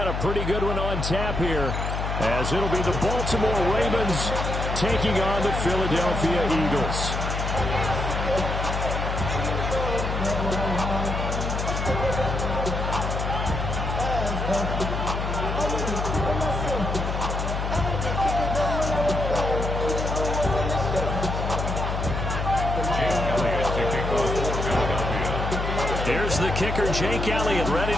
a pretty good one on tap here, as it'll be the Baltimore Ravens taking on the Philadelphia Eagles. Here's the kicker, Jake Elliott, ready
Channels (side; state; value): left; noise; hum, 2 dB below the sound